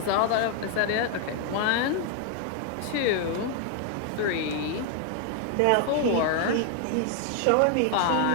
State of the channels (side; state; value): both; different; correlation 0.00